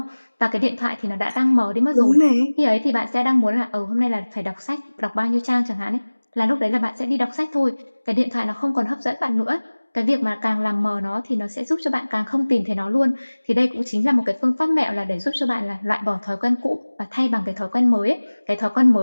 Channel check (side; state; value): both; inverted; correlation -1.00